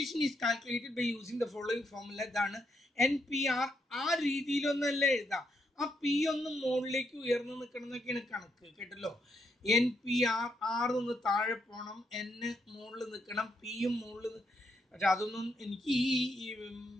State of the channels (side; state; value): both; normal; correlation 0.78